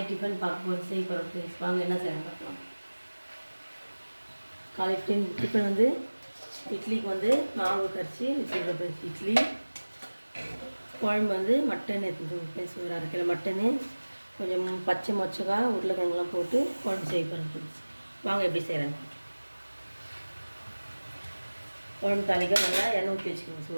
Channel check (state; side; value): inverted; both; correlation -1.00